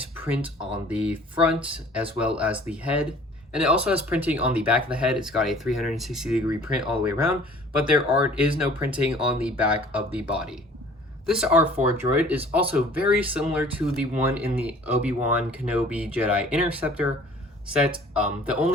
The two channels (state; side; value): normal; both; correlation 0.51